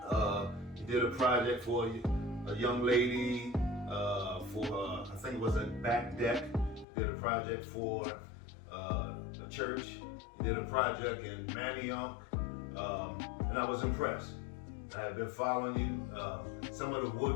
You did a project for a young lady for I think it was a back deck. You did a project for a church. You did a project in Manioc, and I was impressed. I had been following you. Some of the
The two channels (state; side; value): drops out; right; at 6.9 s